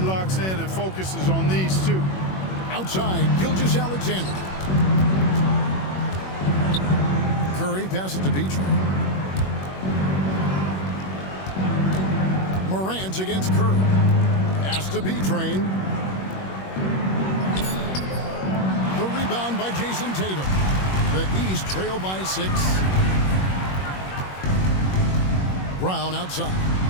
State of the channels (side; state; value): right; late; 21 ms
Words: in and focuses on these two. Outside, Gilgeous-Alexander. Curry passes to Beatrice. Morant against Curry. Pass to B-Train. The rebound by Jason Tatum. The East trail by 6. Brown outside.